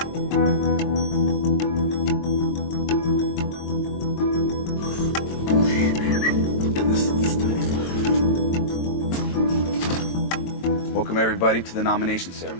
Welcome everybody to the nomination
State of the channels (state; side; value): late; right; 22 ms